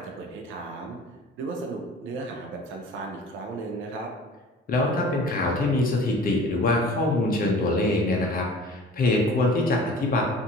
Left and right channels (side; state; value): both; normal; correlation 0.45